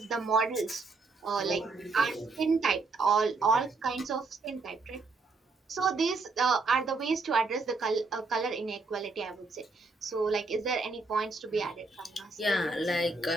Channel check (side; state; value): left; quieter; 3.8 dB